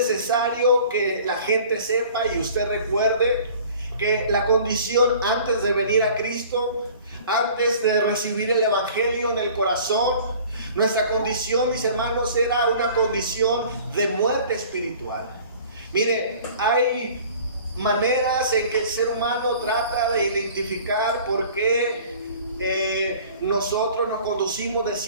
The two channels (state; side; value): inverted; both; correlation -0.48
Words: que la gente sepa y usted recuerde que la condición antes de venir a Cristo, antes de recibir el Evangelio en el corazón, nuestra condición, mis hermanos, era una condición de muerte espiritual. Mire, hay maneras en que el ser humano trata de identificar por qué nosotros nos conducimos de